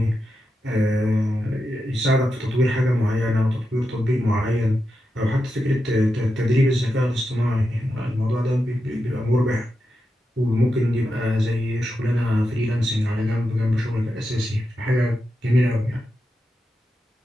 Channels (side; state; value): both; normal; correlation 0.88